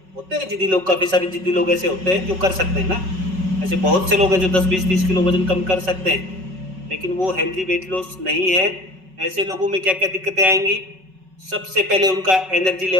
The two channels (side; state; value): left; late; 5.4 ms